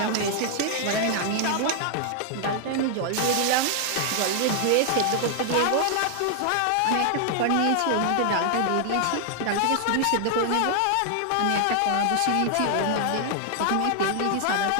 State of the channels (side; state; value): both; different; correlation 0.00